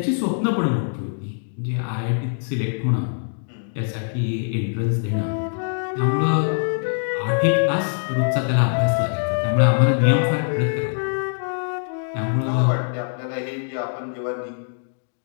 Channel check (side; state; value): right; silent; digital silence